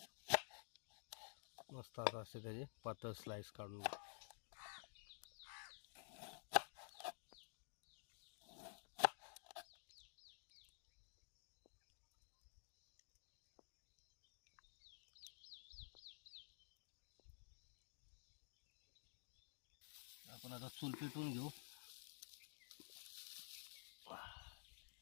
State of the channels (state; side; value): silent; right; digital silence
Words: मस्त आता असे त्याचे पातळ स्लाइस काढून घेऊ. आपण आता चूल पेटवून घेऊ.